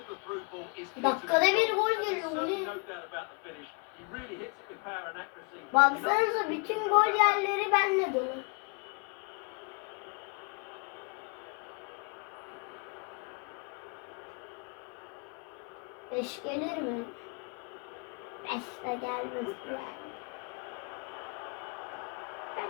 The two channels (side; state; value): right; quieter; 34.3 dB